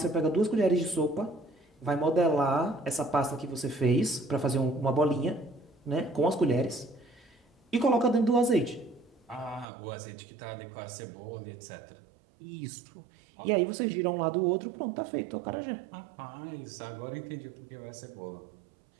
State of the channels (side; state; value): left; drops out; at 9.7 s